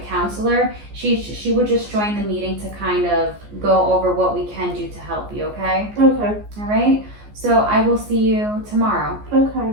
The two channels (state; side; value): late; left; 14 ms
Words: counselor, she would just join the meeting to kind of go over what we can do to help you. Okay. Okay. All right. So I will see you tomorrow. Okay.